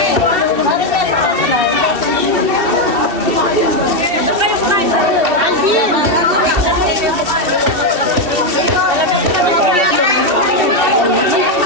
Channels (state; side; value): late; left; 2.7 ms